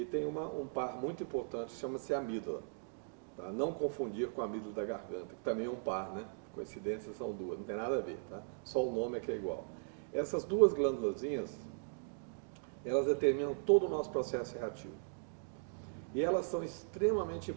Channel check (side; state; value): left; silent; digital silence